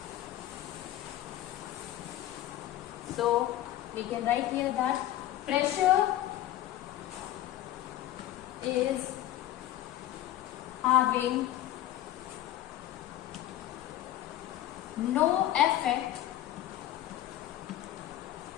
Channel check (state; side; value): quieter; right; 13.4 dB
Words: So we can write here that pressure is having no effect